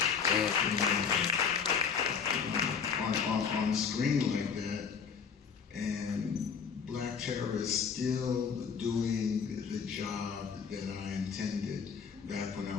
on screen like that, and Black Terror is still doing the job that I intended back when I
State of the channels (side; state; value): right; quieter; 6.4 dB